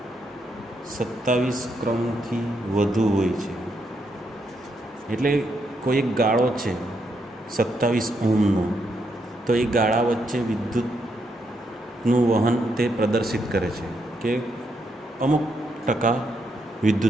27 ક્રમથી વધુ હોય છે. એટલે કોઈ એક ગાળો છે 27 ઓહમનો, તો એ ગાળા વચ્ચે વિદ્યુતનું વહન તે પ્રદર્શિત કરે છે કે અમુક ટકા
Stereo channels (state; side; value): normal; both; correlation 0.79